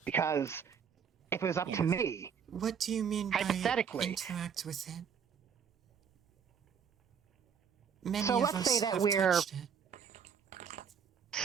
Because if it was up to me, What do you mean by hypothetically, interact with it? Many so of let's say us that have we're touched it.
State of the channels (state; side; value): quieter; left; 7.2 dB